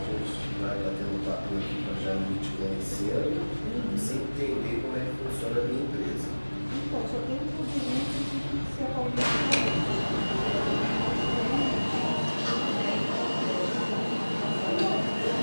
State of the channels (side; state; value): both; inverted; correlation -1.00